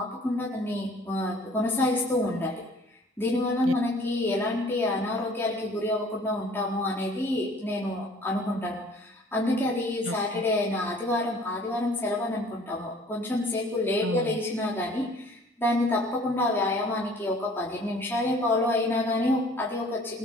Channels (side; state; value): both; normal; correlation 0.53